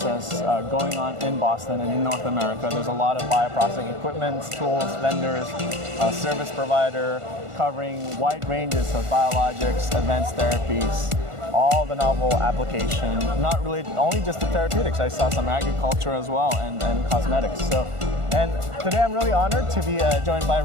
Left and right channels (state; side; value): late; left; 1.4 ms